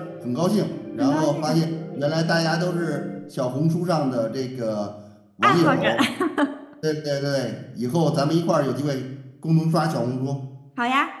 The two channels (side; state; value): both; identical; correlation 1.00